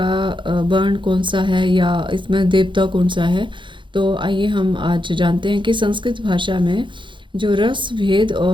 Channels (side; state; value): left; late; 0.23 ms